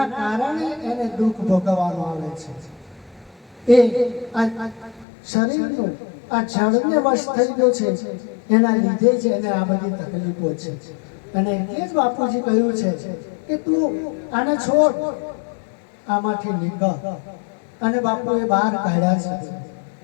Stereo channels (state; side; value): drops out; right; at 5.1 s